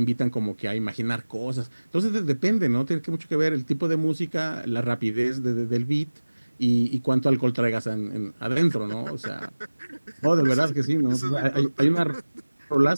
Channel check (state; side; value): inverted; both; correlation -1.00